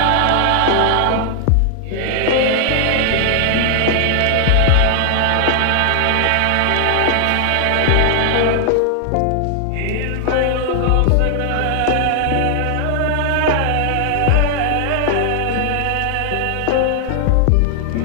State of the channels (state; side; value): different; both; correlation 0.00